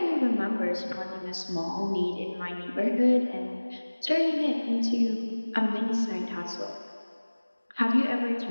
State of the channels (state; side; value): inverted; both; correlation -1.00